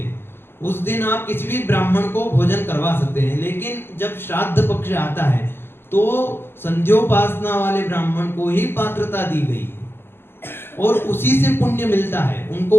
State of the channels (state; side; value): late; right; 0.11 ms